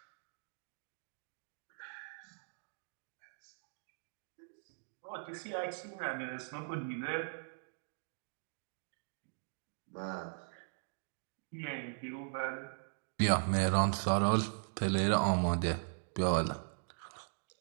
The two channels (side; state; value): left; silent; digital silence